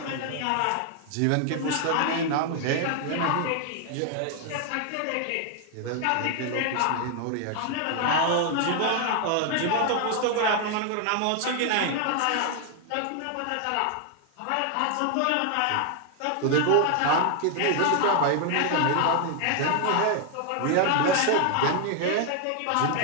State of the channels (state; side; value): different; both; correlation 0.00